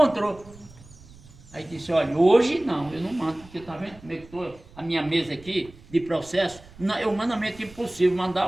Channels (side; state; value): right; noise; rumble, 22 dB below the sound